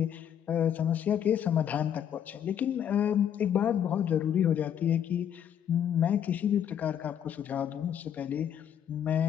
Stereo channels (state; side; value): quieter; right; 9.2 dB